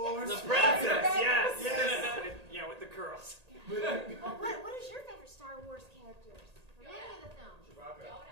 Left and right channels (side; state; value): left; late; 1.8 ms